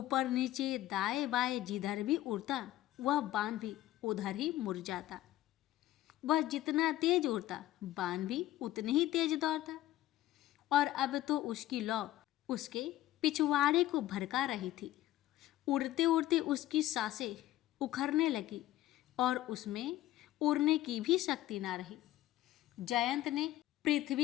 नीचे दाएं बाएं जिधर भी उड़ता वह बाण भी उधर ही मुड़ जाता। वह जितना तेज उड़ता बाण भी उतने ही तेज दौड़ता और अब तो उसकी लौ उसके पिछवाड़े को भड़का रही थी। उड़ते उड़ते उसकी सांसें उखड़ने लगी और उसमें उड़ने की भी शक्ति ना रही। जयंत ने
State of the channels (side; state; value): right; quieter; 14.7 dB